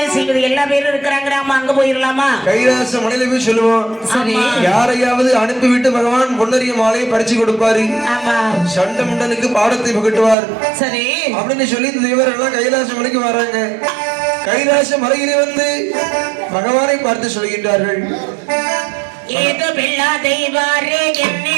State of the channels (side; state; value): left; drops out; at 10.4 s